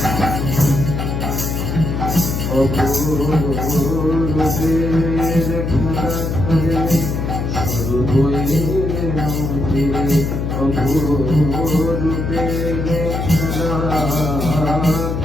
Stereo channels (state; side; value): noise; left; hum, 2 dB below the sound